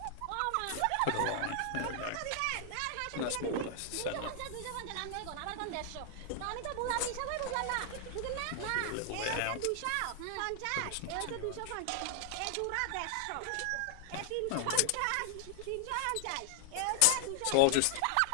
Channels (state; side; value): different; both; correlation -0.01